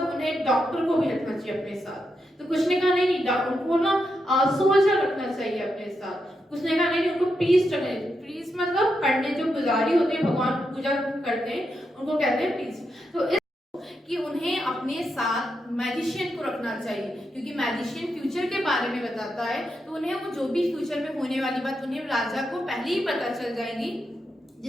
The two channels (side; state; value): both; normal; correlation 0.84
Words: उन्हें एक डॉक्टर को भी रखना चाहिए अपने साथ. तो कुछ ने कहा नहीं, उनको ना सोल्जर रखना चाहिए अपने साथ. कुछ ने कहा नहीं, उनको प्रीस्ट रखना चाहिए. प्रीस्ट मतलब पंडित, जो पुजारी होते हैं, भगवान पूजा करते हैं, उनको कहते हैं प्रीस्ट. तो कि उन्हें अपने साथ मैजिशियन को रखना चाहिए, क्योंकि मैजिशियन फ्यूचर के बारे में बताता है. तो उन्हें वो जो भी फ्यूचर में होने वाली बात उन्हें राजा को पहले ही पता चल जाएगी,